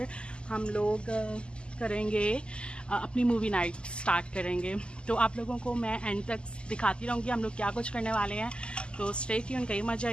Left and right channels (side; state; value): right; late; 0.051 ms